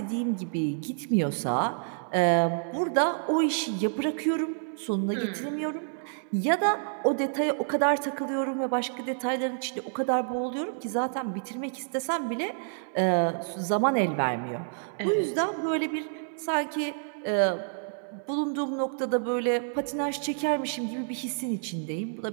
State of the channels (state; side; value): silent; left; 59 dB below the other